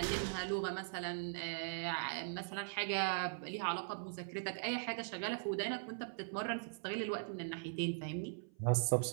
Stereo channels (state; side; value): silent; left; 51 dB below the other